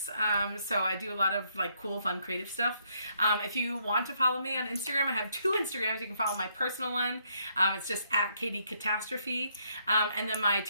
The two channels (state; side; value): inverted; both; correlation -0.72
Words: So I do a lot of like cool, fun, creative stuff. If you want to follow me on Instagram, I have two Instagrams. You can follow my personal one. It's just at Katy Catastrophe. And then my